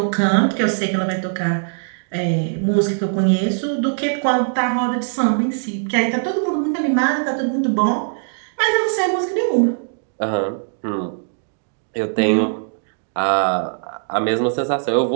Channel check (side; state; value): left; silent; digital silence